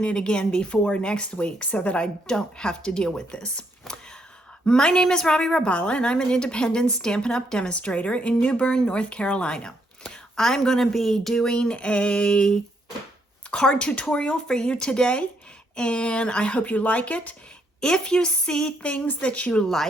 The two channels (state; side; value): normal; both; correlation 0.74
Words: it again before next week so that I don't have to deal with this. My name is Robbie Rabala, and I'm an independent Stampin' Up! Demonstrator in New Bern, North Carolina. I'm going to be doing a card tutorial for you today, and I hope you like it. If you see things that you